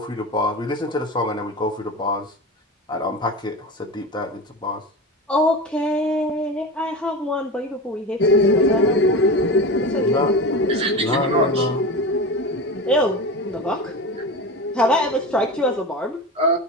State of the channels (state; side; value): normal; both; correlation 0.27